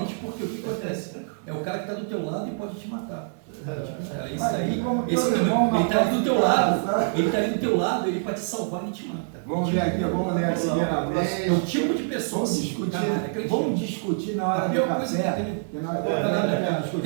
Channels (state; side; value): silent; left; 58 dB below the other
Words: porque o que acontece? É o cara que está do teu lado e pode te matar. Isso aí, ele está ali do teu lado, ele pode te salvar e te mata. Vamos ver aqui, vamos ler a primeira vez. É o tipo de pessoa vamos discutir na hora do café.